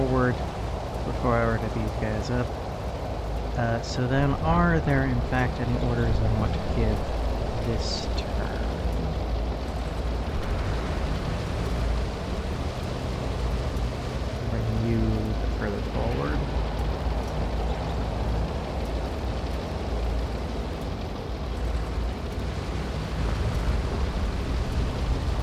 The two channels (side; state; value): both; identical; correlation 1.00